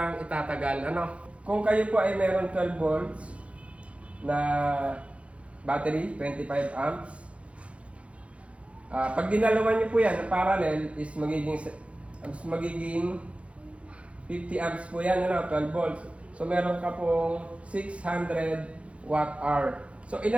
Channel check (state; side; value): late; left; 0.062 ms